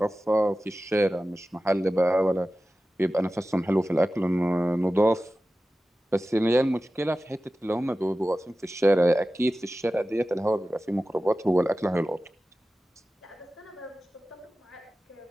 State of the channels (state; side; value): normal; both; correlation 0.95